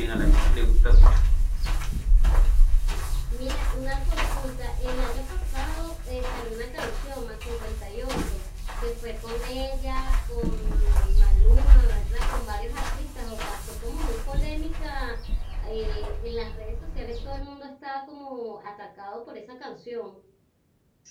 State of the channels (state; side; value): identical; both; correlation 1.00